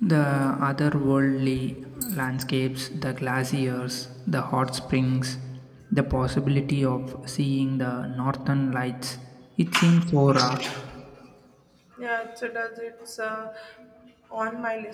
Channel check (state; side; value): identical; both; correlation 1.00